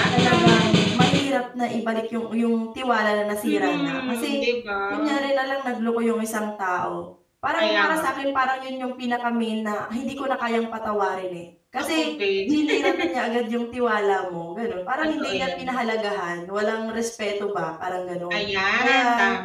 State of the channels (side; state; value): both; identical; correlation 1.00